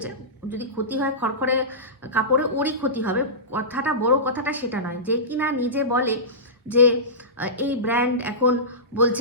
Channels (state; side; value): normal; both; correlation -0.19